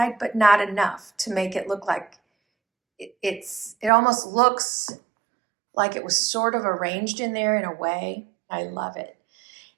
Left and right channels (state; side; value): drops out; left; at 3.9 s